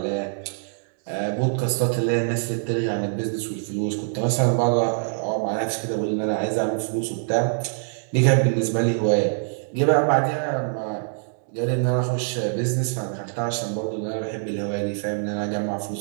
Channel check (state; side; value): silent; left; digital silence